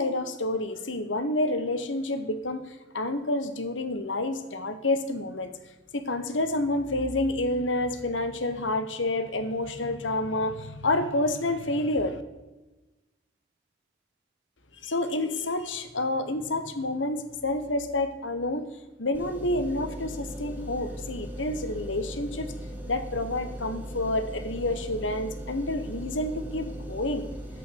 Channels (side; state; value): both; normal; correlation -0.06